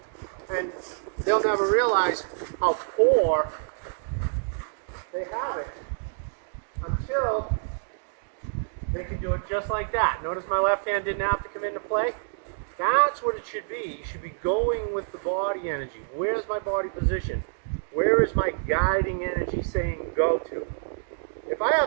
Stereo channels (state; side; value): silent; left; digital silence